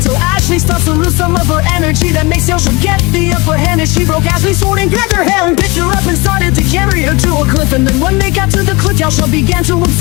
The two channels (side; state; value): right; quieter; 25.7 dB